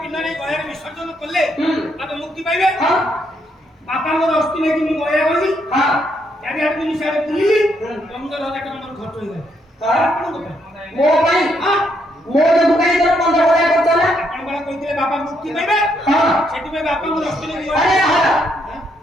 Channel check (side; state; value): both; normal; correlation 0.75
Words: ନେଇ ଗୟାରେ ବିସର୍ଜନ କଲେ ତାପରେ ମୁକ୍ତି ପାଇବେ ବାପାଙ୍କର ଅସ୍ଥି ନେଇକି ମୁଁ ଗୟା ଗଲି ଚାରିଆଡେ ମୁଁ ସିଆଡେ ବୁଲିଲି 15,000 ଟଙ୍କା ମୋର ଖର୍ଚ୍ଚ ହେଇଗଲା ମୋ ପାଇଁ ମୋ ଯୋଗୁ କାଇଁ ତୋର 15,000 ଖର୍ଚ୍ଚ ହେଲା ଆପଣ କଣ କହିଥିଲେ ବାପା ମୁକ୍ତି ପାଇବେ ସେଥିପାଇଁ ବାପାଙ୍କର ଅସ୍ଥି ନେଇକି